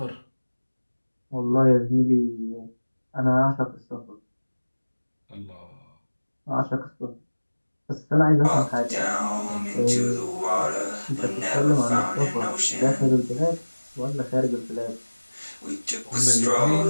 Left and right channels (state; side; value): inverted; both; correlation -1.00